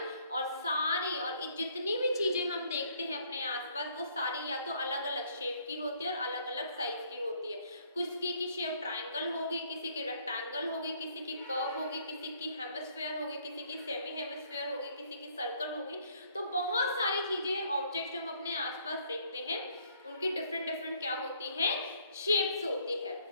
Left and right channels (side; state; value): both; inverted; correlation -0.65